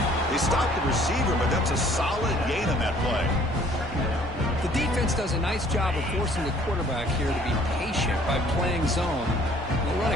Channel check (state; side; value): normal; both; correlation 0.57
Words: They stopped the receiver, but that's a solid gain on that play. The defense does a nice job of forcing the quarterback here to be patient by playing zone. They'll run